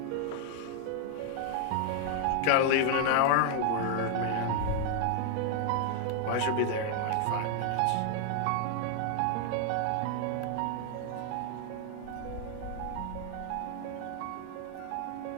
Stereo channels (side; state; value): both; different; correlation 0.00